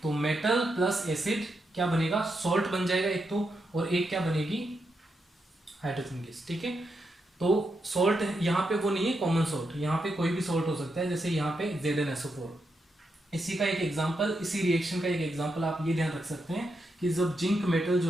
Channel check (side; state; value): both; normal; correlation 0.84